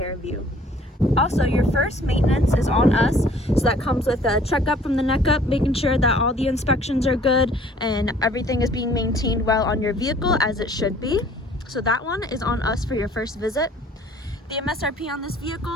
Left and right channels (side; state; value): both; normal; correlation 0.55